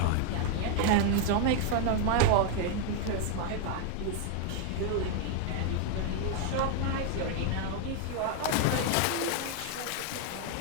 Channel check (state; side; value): different; both; correlation 0.01